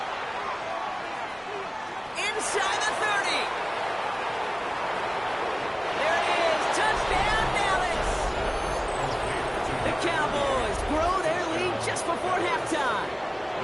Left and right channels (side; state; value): both; identical; correlation 1.00